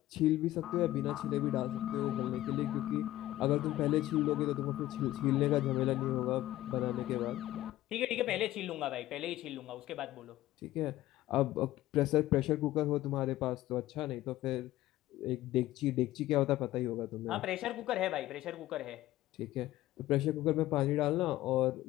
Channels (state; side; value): quieter; right; 15.2 dB